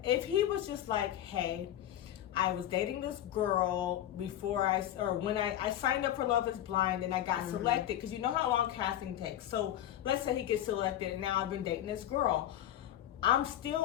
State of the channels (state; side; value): quieter; right; 11.9 dB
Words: if he was just like, hey, I was dating this girl when I signed up for Love is Blind and I got selected, because you know how long casting takes. So let's say he gets selected and now I've been dating this girl. I'm